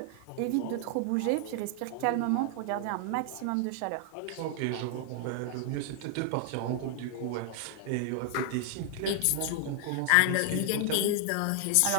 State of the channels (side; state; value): both; different; correlation 0.00